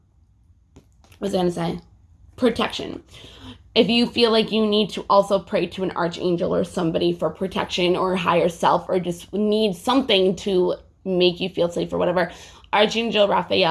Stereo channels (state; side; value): identical; both; correlation 1.00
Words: was I going to say? Protection. If you feel like you need to also pray to an archangel or somebody for protection or higher self, or just need something to make you feel safe or whatever, Archangel